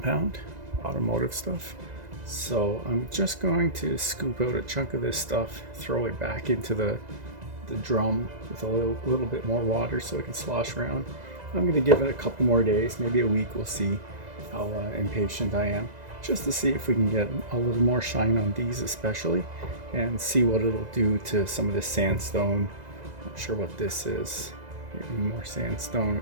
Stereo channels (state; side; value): late; left; 2.0 ms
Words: automotive stuff. So I'm just going to scoop out a chunk of this stuff, throw it back into the drum with a little bit more water so it can slosh around. I'm going to give it a couple more days, maybe a week. We'll see how impatient I am, just to see if we can get a little more shine on these especially, and see what it'll do to some of this sandstone. Not sure what this is. Maybe more sandstone